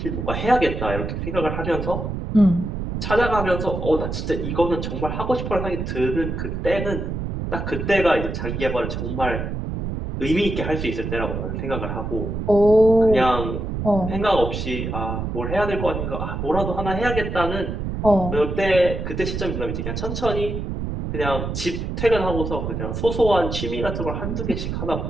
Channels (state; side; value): noise; right; rumble, 4 dB below the sound